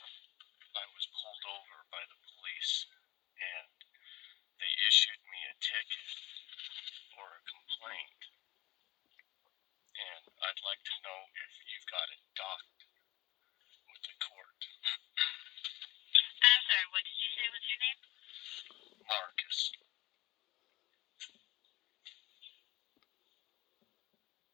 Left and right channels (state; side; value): quieter; right; 18.9 dB